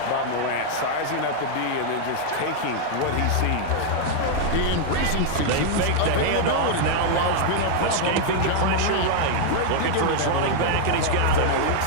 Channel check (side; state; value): both; different; correlation 0.00